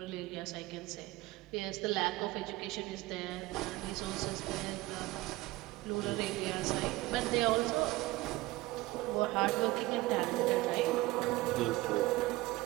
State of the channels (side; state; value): left; quieter; 19.4 dB